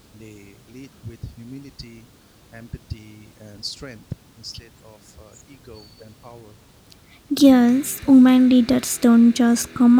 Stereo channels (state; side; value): identical; both; correlation 1.00